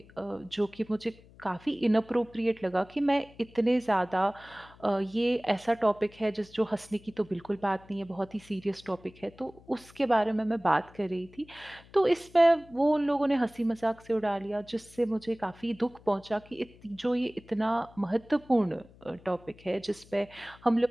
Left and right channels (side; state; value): left; noise; hum, 24 dB below the sound